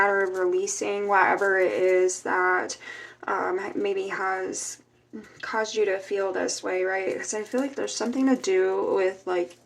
of releasing whatever it is that maybe has caused you to feel this way, right? Because I feel like there's something to do with like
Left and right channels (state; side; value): identical; both; correlation 1.00